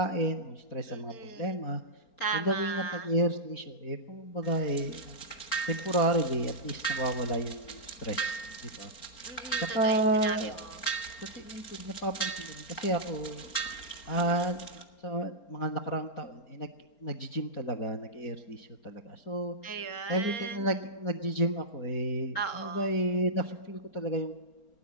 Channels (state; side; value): late; right; 4.4 ms